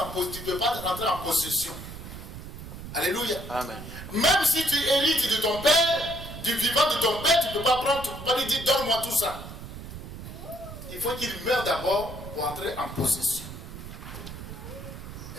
en possession. Alléluia. Amen. Même si tu hérites de ton père, du vivant de ton père, tu ne peux pas prendre, tu ne peux pas lui dire donne-moi tout ça. Il faut qu'il meure d'abord pour entrer en possession.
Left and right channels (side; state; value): right; noise; rumble, 11 dB below the sound